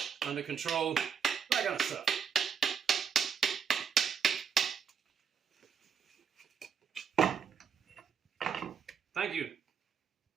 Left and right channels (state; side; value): quieter; left; 6.9 dB